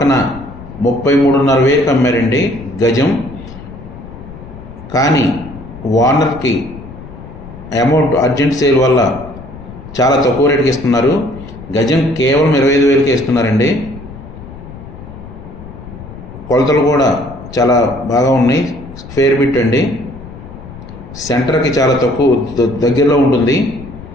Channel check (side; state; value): left; noise; rumble, 15 dB below the sound